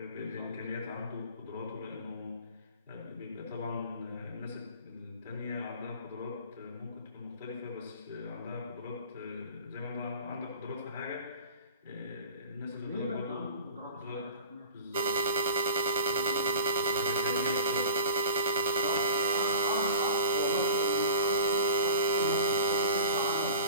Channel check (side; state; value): both; inverted; correlation -0.39